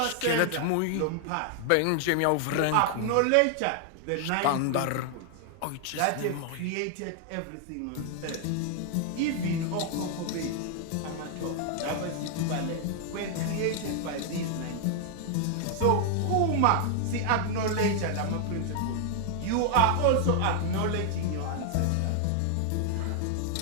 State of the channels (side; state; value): both; different; correlation 0.00